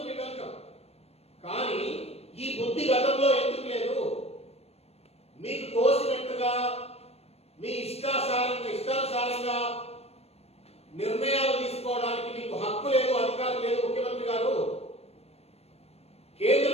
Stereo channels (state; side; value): late; right; 0.30 ms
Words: we welcome. కానీ ఈ బుద్ధి గతంలో ఎందుకు లేదు? మీకు తోసినట్టుగా మీ ఇష్టానుసారంగా నిర్ణయాలు తీసుకోవడానికి మీకు హక్కు లేదు, అధికారం లేదు. ముఖ్యమంత్రి గారు, కేంద్ర